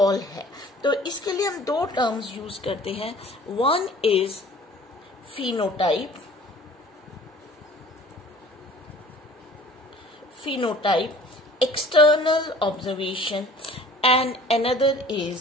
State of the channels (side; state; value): both; normal; correlation 0.49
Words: है। तो इसके लिए हम दो टर्म्स यूज करते हैं। One is phenotype, external observation, and another